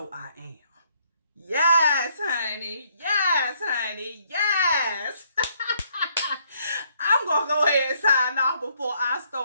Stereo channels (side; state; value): both; inverted; correlation -0.69